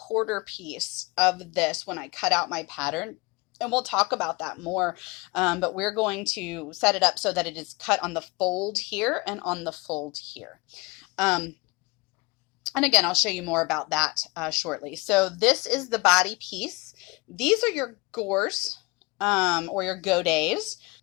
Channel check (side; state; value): right; quieter; 25.4 dB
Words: piece of this when I cut out my pattern. And we'll talk about that more, but we're going to set it up so that it is cut on the fold here and on the fold here. And again, I'll show you more about that shortly. So this is the body piece. These are your gores or your godets.